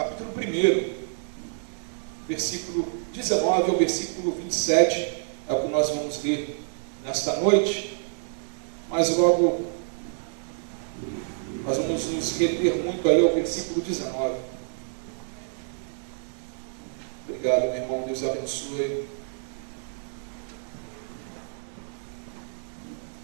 1, versículo 19 ao versículo 27. É o que nós vamos ler nesta noite. Mas logo nós vamos nos reter muito aí ao versículo 19. Obrigado, meu irmão. Deus abençoe.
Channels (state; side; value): silent; left; digital silence